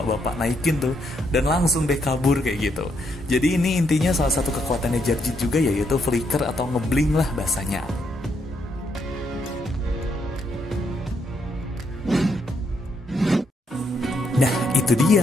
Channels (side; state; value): both; normal; correlation 0.76